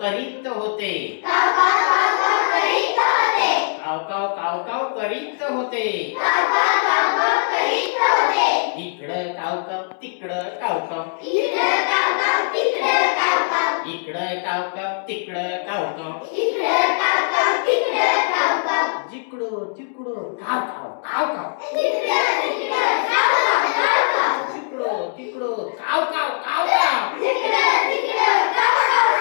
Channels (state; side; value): silent; right; digital silence